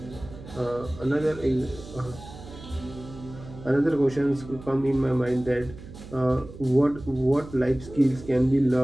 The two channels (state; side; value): noise; right; hum, 15 dB below the sound